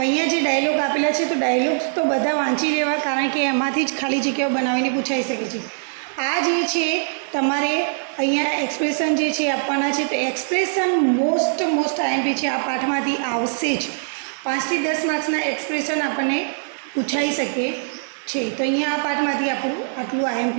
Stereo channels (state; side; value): silent; left; digital silence